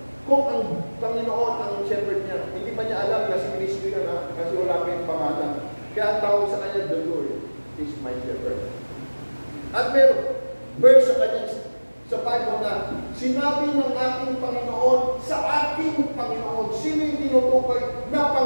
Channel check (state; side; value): inverted; both; correlation -1.00